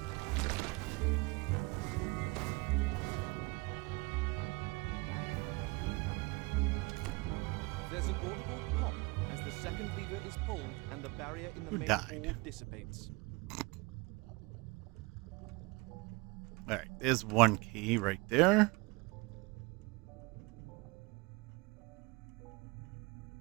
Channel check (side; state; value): left; quieter; 25.7 dB